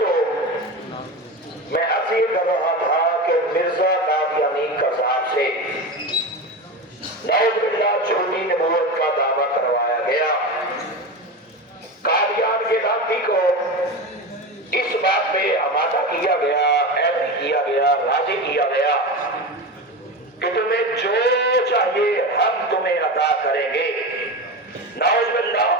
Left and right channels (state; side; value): normal; both; correlation 0.23